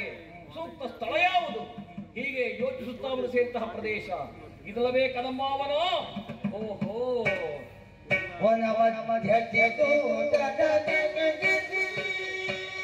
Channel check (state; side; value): identical; both; correlation 1.00